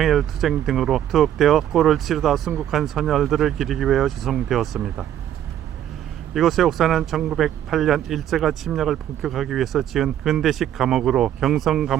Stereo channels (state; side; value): quieter; left; 11.1 dB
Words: 등으로 투옥되어 골을 치르다 순국한 선열들을 기리기 위하여 조성되었습니다. 이곳의 옥사는 1908년 일제가 침략을 본격하기 위해서 지은 근대식 감옥으로